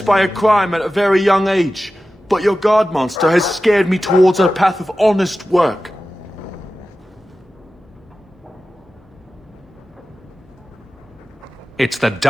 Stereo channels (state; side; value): normal; both; correlation 0.94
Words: by a crime at a very young age, but your guard monster has scared me towards a path of honest work. It's the